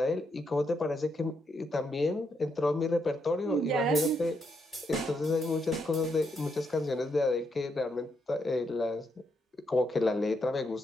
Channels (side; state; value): both; normal; correlation 0.79